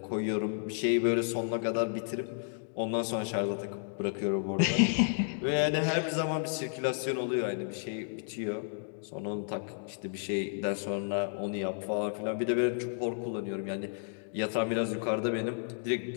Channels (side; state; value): right; silent; digital silence